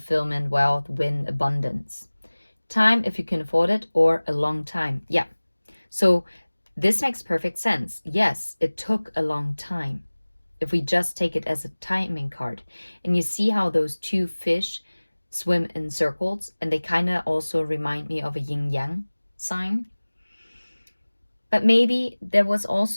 wealth, win, abundance. Time if you can afford it, or a long time. Yeah. So this makes perfect sense. Yes, it took a long time. If we just take it as a timing card. And you see how those two fish swim in circles, and they kind of also remind me of a yin-yang sign. But maybe there was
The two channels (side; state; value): both; inverted; correlation -1.00